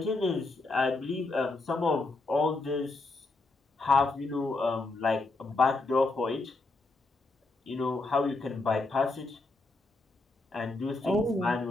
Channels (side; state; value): right; quieter; 3.3 dB